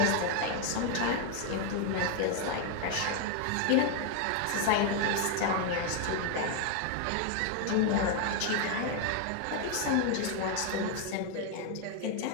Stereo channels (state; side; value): different; both; correlation 0.01